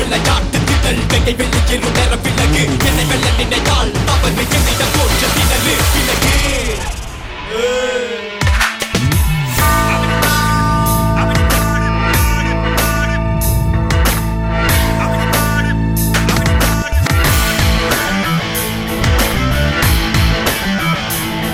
திடல் வெகை வெளியேறும் நேர விலகு. என்னை வெல்ல நினைத்தால் அவர்கள் என்னிடம் தோற்ற திணறு விலகு.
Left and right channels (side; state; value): both; identical; correlation 1.00